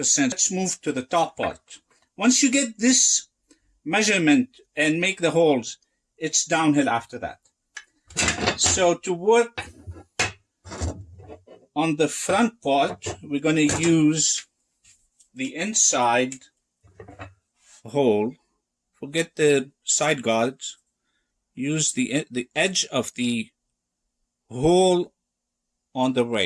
Let's move to the top part. Once you get this measurement and make the holes, it's downhill after that. So to work on the front part, we're going to use the inside hole. Forget the side guards. Use the edge of the hole on the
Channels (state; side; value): identical; both; correlation 1.00